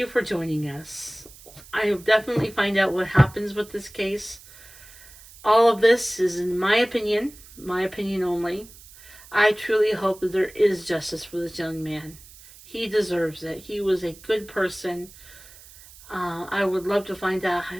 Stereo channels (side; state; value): right; noise; hiss, 21 dB below the sound